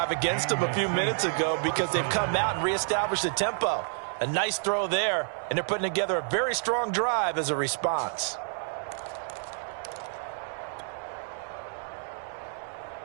against them a few minutes ago because they've come out and reestablished the tempo. A nice throw there, and they're putting together a very strong drive as a response.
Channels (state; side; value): silent; left; 59 dB below the other